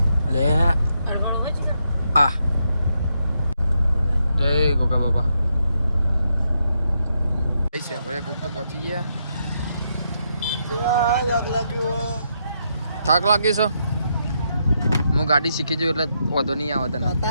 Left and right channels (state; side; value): inverted; both; correlation -0.80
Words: લે આ જય ગોગા બાબા છે ભલે કુક તો પહોંચી ગયા થાક લાગી છે હું ગાડી શીખી જઉં એટલે વાંધો નહીં આવે તને